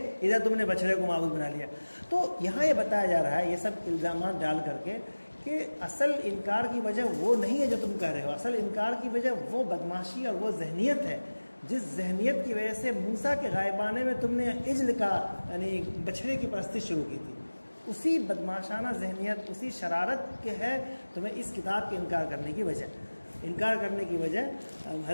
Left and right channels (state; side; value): inverted; both; correlation -1.00